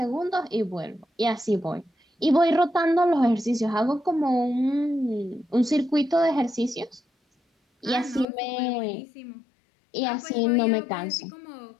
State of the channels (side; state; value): right; drops out; at 8.2 s